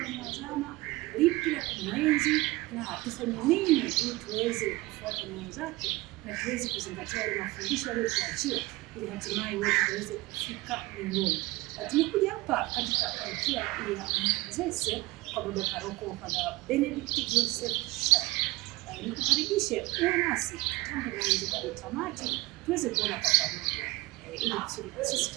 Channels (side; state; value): left; quieter; 20.6 dB